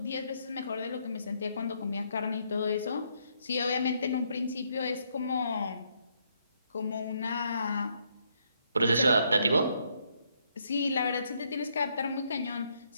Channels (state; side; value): inverted; both; correlation -0.73